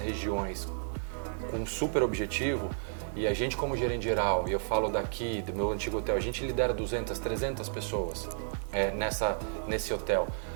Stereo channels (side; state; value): left; silent; digital silence